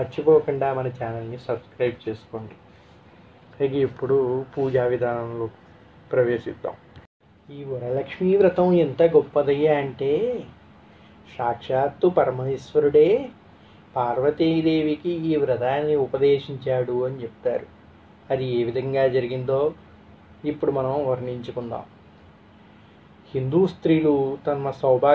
మన ఛానల్ని సబ్స్క్రైబ్ చేసుకోండి. ఇక ఇప్పుడు పూజా విధానంలో ప్రవేశిద్దాం. ఈ వరలక్ష్మీ వ్రతం ఎంత గొప్పదయ్యా అంటే సాక్షాత్తు పరమేశ్వరుడే పార్వతీదేవికి ఈ వ్రతాన్ని ఉపదేశించాడు అని చెప్తారు. అది ఏ విధంగా జరిగిందో ఇప్పుడు మనం వర్ణించుకుందాం. హిందూ స్త్రీలు తమ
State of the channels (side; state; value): both; identical; correlation 1.00